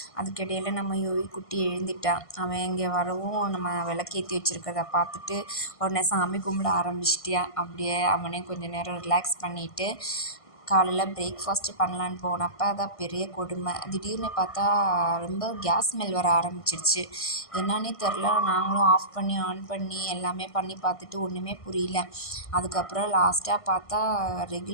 அதுக்கிடையில் நம்ம யோகி குட்டி எழுந்துட்டான். அவன் இங்கே வரவும் நம்ம விளக்கேற்றி வச்சுருக்கிறத பார்த்துட்டு உடனே சாமி கும்பிட ஆரம்பிச்சிட்டியா. அப்படியே அவனே கொஞ்சம் நேரம் ரிலாக்ஸ் பண்ணிவிட்டு காலையில் பிரேக்ஃபாஸ்ட்டு பண்ணலான்னு போனப்போ அதான் பெரிய கொடுமை. திடீர்னு பார்த்தா ரொம்ப கேஸ் ஸ்மெல் வர ஆரம்பிச்சிருச்சு. என்னான்னே தெரில. நாங்களும் ஆஃப் பண்ணி ஆன் பண்ணி எல்லாமே பண்ணி பார்த்துட்டு ஒன்றுமே புரியல. அதுக்கப்புறம் லாஸ்ட்டாக பார்த்தா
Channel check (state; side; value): late; right; 1.5 ms